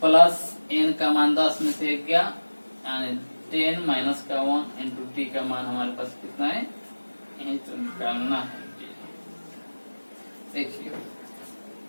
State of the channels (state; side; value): inverted; both; correlation -1.00